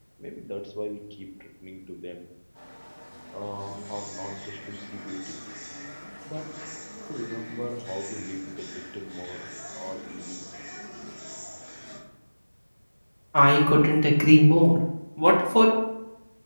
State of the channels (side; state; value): both; inverted; correlation -1.00